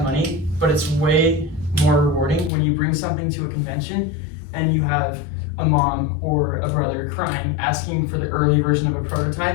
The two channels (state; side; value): drops out; right; at 2.5 s